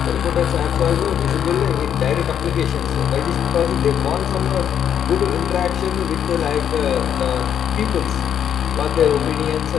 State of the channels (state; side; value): quieter; right; 9.1 dB